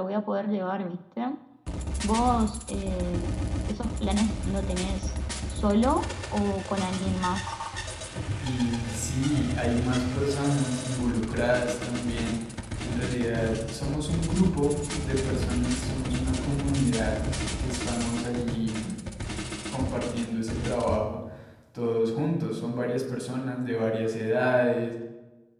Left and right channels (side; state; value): both; identical; correlation 1.00